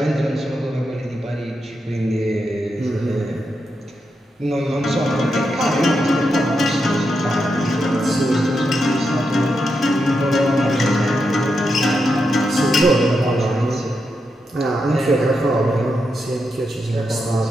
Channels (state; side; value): normal; both; correlation 0.85